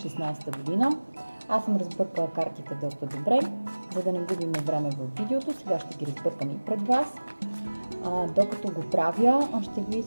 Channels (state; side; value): inverted; both; correlation -1.00